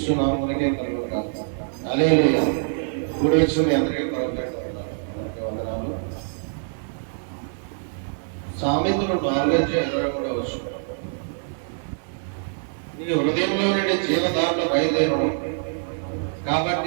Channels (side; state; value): left; silent; digital silence